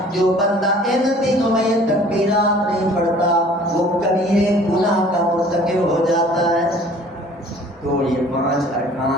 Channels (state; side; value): normal; both; correlation 0.51